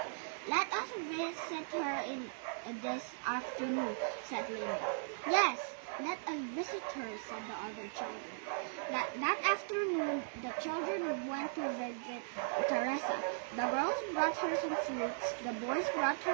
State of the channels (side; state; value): left; silent; digital silence